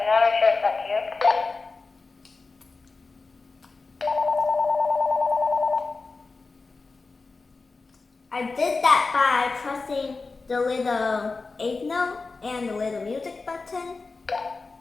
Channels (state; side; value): quieter; right; 4.0 dB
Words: not sure if that's you. I did that by pressing the little 8 note and the little music button.